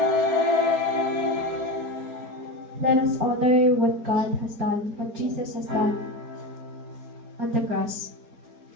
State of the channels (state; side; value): late; left; 4.3 ms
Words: Let us honor what God has done, what Jesus has done on the cross.